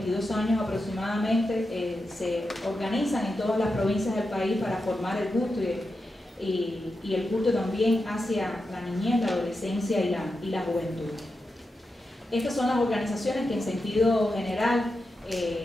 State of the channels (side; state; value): both; normal; correlation 0.89